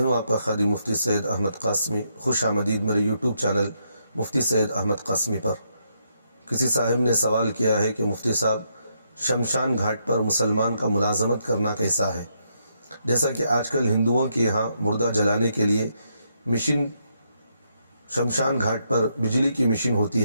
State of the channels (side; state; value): both; inverted; correlation -0.77